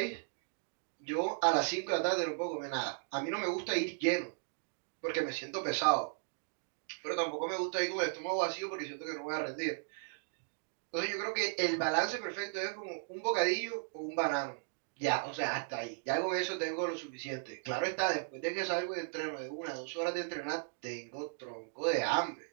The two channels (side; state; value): left; silent; 54 dB below the other